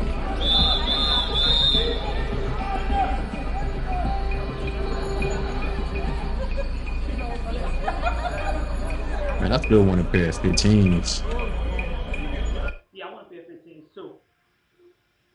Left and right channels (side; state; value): both; identical; correlation 1.00